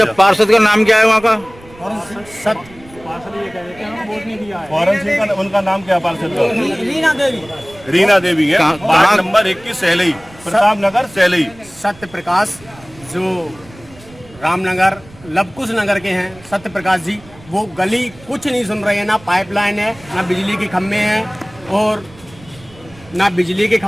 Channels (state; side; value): noise; right; rumble, 23 dB below the sound